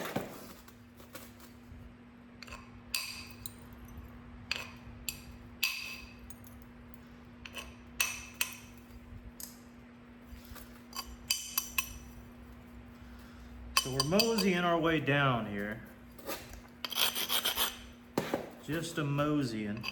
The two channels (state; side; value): identical; both; correlation 1.00